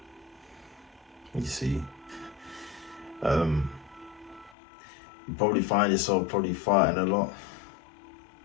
You see, you probably find yourself fighting a lot.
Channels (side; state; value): right; drops out; at 4.5 s